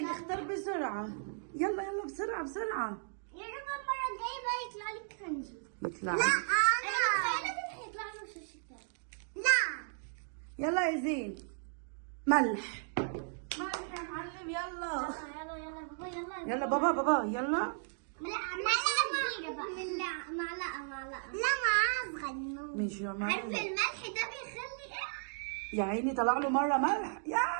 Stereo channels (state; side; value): silent; left; digital silence